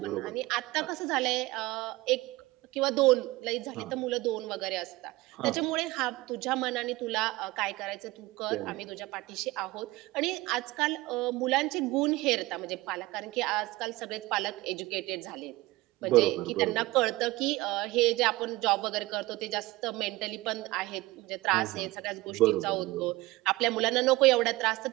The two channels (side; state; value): left; quieter; 20.1 dB